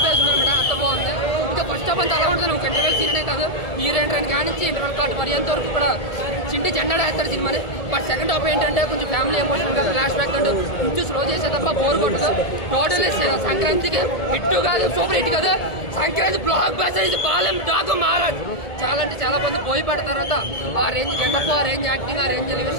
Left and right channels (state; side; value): late; right; 1.8 ms